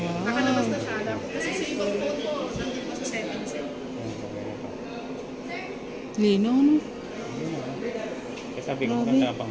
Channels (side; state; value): both; identical; correlation 1.00